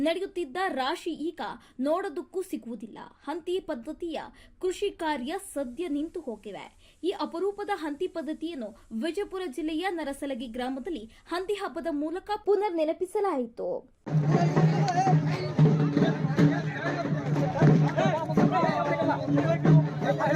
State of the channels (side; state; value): both; identical; correlation 1.00